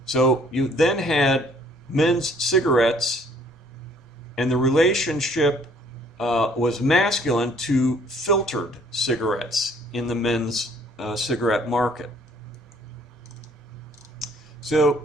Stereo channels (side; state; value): both; normal; correlation 0.59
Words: So you then had men's cigarettes, and the relationship was masculine to filtered cigarettes in the men's cigarette market.